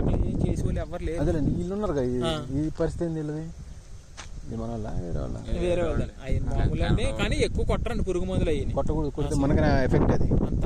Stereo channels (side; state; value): both; identical; correlation 1.00